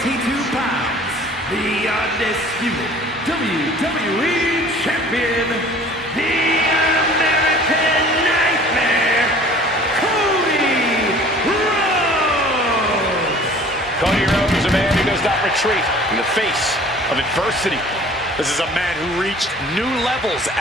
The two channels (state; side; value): normal; both; correlation 0.49